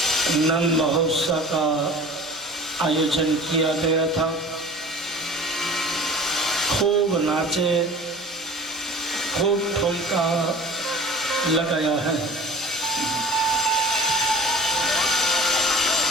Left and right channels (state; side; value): normal; both; correlation 0.43